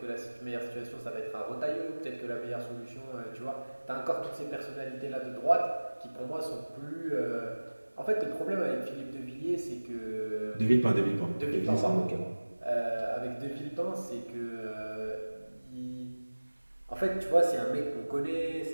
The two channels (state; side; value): inverted; both; correlation -1.00